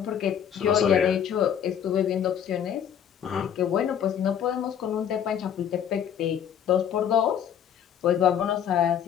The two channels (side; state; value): right; quieter; 9.0 dB